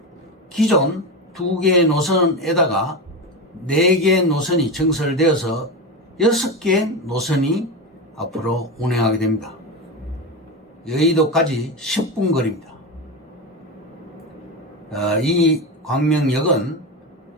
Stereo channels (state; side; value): normal; both; correlation 0.18